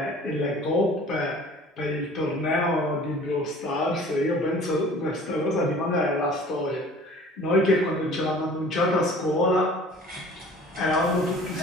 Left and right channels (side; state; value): both; normal; correlation 0.47